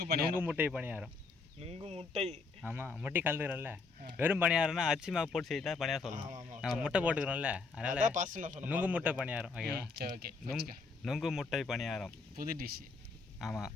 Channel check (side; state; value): right; quieter; 4.3 dB